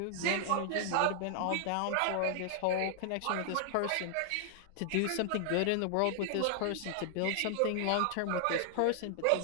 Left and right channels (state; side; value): different; both; correlation 0.00